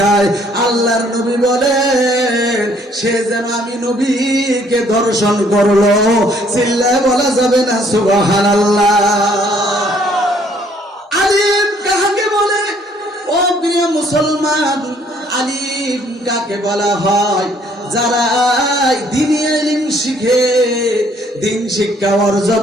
আল্লাহর নবী বলেন সে যেন আমি নবীকে দর্শন করলো। চিল্লায় বলা যাবে না সুবহানাল্লাহ। আলিম কাকে বলে? ও প্রিয় মুসলমান, আলিম কাকে বলা হয়? যারা দ্বীনি ইলম শিখে, দিন শিক্ষা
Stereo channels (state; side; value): normal; both; correlation 0.63